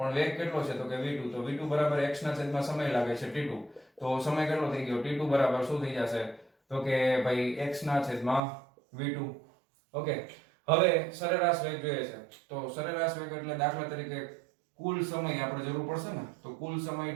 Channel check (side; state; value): left; drops out; at 8.4 s